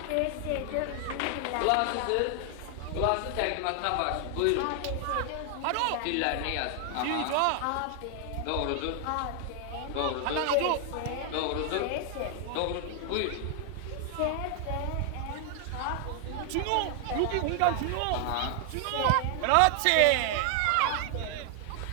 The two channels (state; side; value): different; both; correlation 0.00